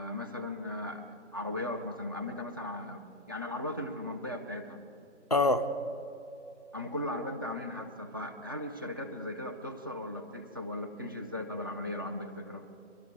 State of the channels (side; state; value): both; normal; correlation -0.01